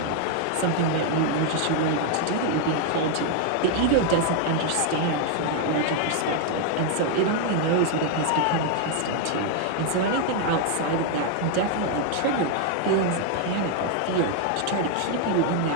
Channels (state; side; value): different; both; correlation 0.00